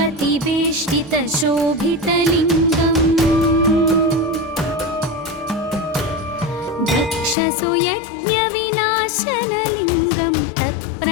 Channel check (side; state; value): right; drops out; at 7.4 s